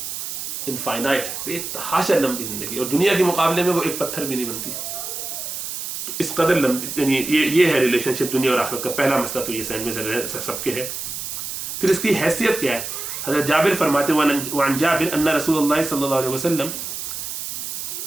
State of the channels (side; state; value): right; noise; hiss, 6 dB below the sound